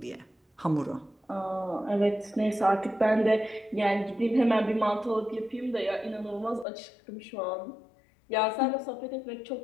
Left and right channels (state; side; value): drops out; right; at 6.7 s